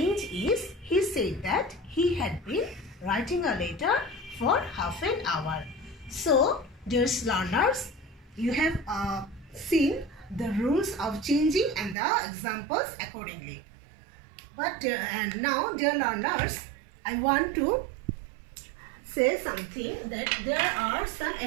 is he said that he had been writing a letter for half an hour. So, dear learners, you have seen the rules of changing and the examples accordingly. But and now, dear learners, I want to say something that there are some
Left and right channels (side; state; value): left; drops out; at 12.0 s